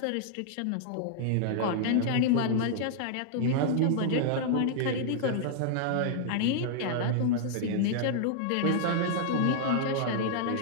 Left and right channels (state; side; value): different; both; correlation -0.01